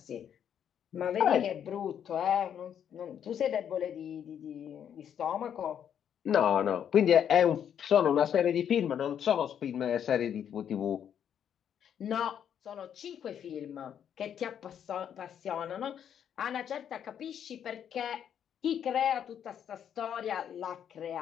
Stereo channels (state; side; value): quieter; right; 9.0 dB